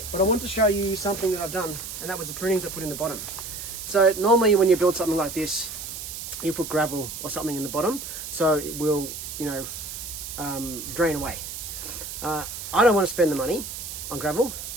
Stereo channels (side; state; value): right; noise; hiss, 8 dB below the sound